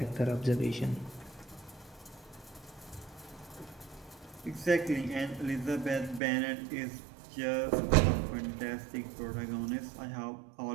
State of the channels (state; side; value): drops out; left; at 6.2 s